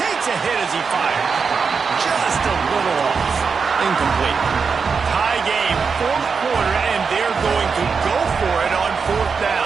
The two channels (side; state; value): left; quieter; 5.5 dB